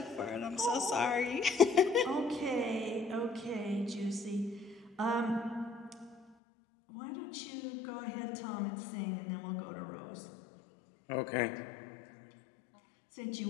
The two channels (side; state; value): right; drops out; at 6.2 s